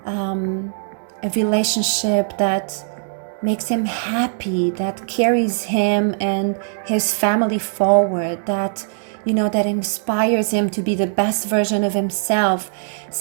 a relationship that makes him happy, that carries him and his family forward, that that inspires him to be the best version of himself,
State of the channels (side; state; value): left; silent; digital silence